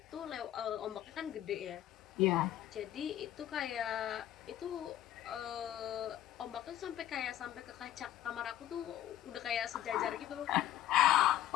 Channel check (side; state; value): right; quieter; 12.7 dB